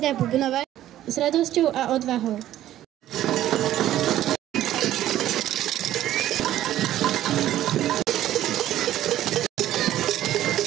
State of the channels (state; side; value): quieter; left; 13.0 dB